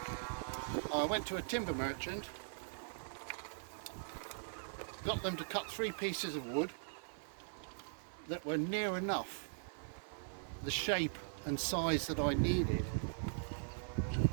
I went to a timber merchant, got them to cut 3 pieces of wood that were near enough the shape and size that I needed.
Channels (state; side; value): silent; left; 51 dB below the other